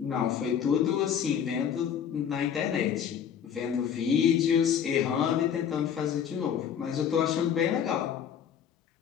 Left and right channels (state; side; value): quieter; right; 8.4 dB